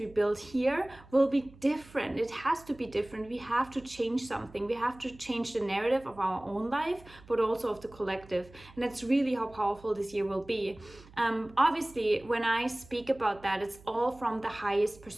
build here will be different. It has to be different. We have to change something. We have to change the narrative of our own life, but also of the collective. And that's really how powerful this year will be. Obviously, when I speak about that, it's all from the highest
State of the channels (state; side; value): noise; right; hum, 22 dB below the sound